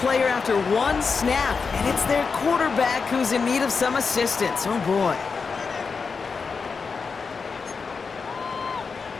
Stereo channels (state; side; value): quieter; right; 5.1 dB